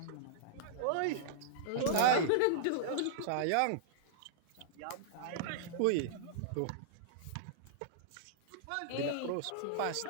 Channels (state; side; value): different; both; correlation -0.02